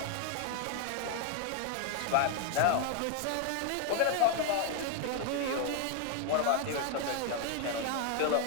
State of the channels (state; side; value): different; both; correlation 0.00